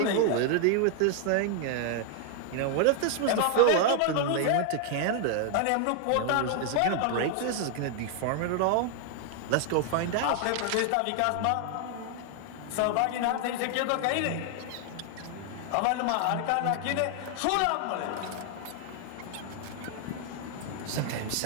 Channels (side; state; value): both; different; correlation 0.00